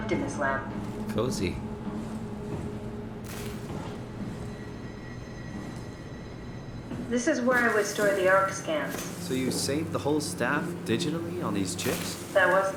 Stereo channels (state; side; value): identical; both; correlation 1.00